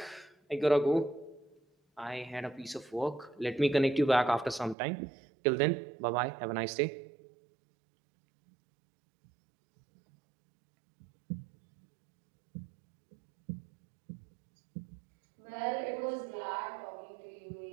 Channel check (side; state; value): left; drops out; at 4.8 s